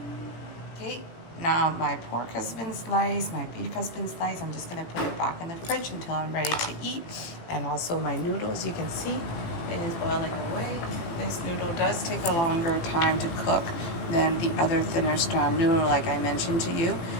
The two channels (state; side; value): late; right; 18 ms